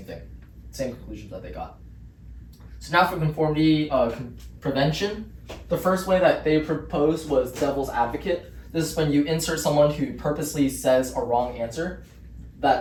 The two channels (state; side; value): identical; both; correlation 1.00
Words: thing, same conclusions that they got. So now for conformity prevention, the first way that they proposed was devil's advocate. This is when you insert someone who purposely says a wrong answer